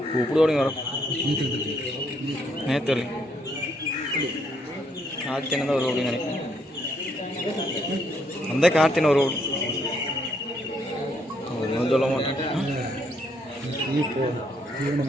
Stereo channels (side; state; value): both; normal; correlation 0.72